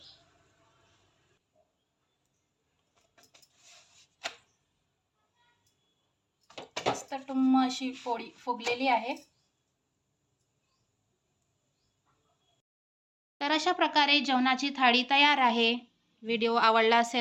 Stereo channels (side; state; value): both; identical; correlation 1.00